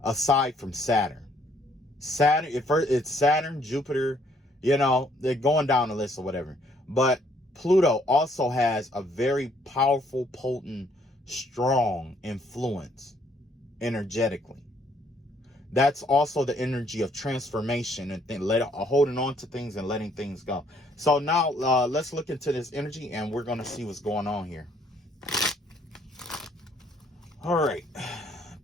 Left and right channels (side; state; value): both; normal; correlation 0.66